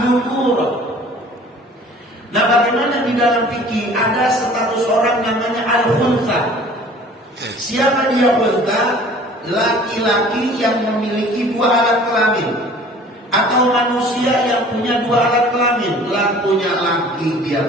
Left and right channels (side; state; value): both; normal; correlation 0.49